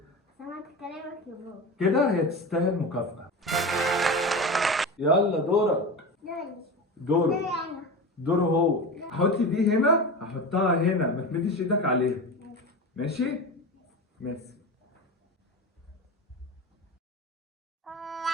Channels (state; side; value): normal; both; correlation 0.27